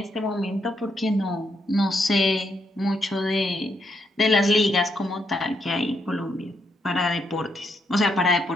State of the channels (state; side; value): normal; both; correlation 0.78